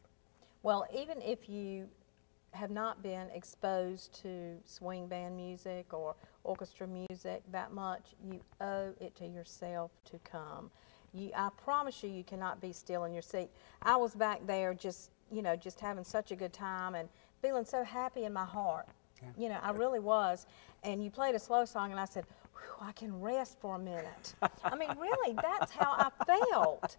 Well, even if you have not been exposed to swing band music or orchestra music that much, you owe it to yourself to come. I promise you, you cannot be still in your seat. I was back there just having such a good time and feeling so happy in my heart. Yeah. I really was. And you played a slow song, and I said, I can rest for a minute. I mean, really, that's how I felt,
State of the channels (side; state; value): right; silent; digital silence